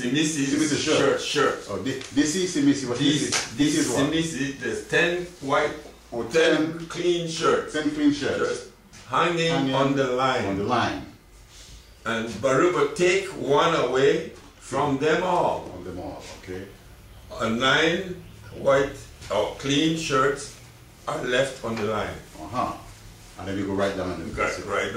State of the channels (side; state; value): both; identical; correlation 1.00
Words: shirt. Oh, Disi Simisi. What is Disi Simisi. There's 10 white, 10 clean shirts. 10 clean shirts. Hanging on the line. On the line. And barüba take one away from them all. On them all, okay. 9 white or clean shirts are left on the line. Uh-huh. And then we go right down and right